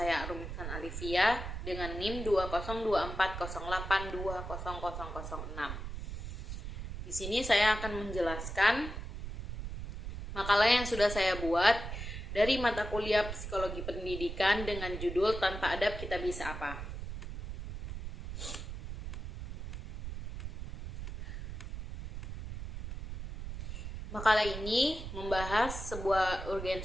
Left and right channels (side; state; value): right; noise; rumble, 8 dB below the sound